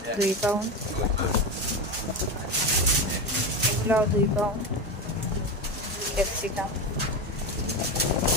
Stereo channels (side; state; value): both; normal; correlation 0.18